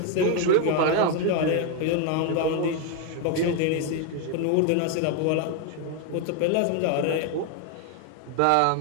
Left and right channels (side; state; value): both; different; correlation 0.01